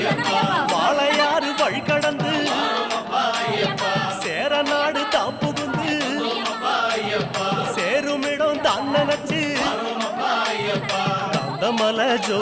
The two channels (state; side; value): identical; both; correlation 1.00